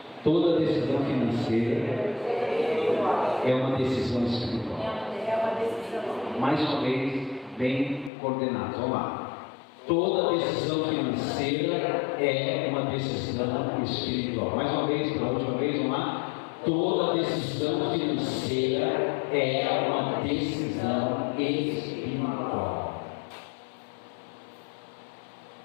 Toda decisão financeira é uma decisão espiritual. Mais uma vez, bem coordenado. Vamos lá. Toda decisão financeira é uma decisão espiritual. Mais uma vez, pela última vez, vamos lá. Toda decisão financeira é uma decisão espiritual.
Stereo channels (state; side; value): drops out; right; at 8.1 s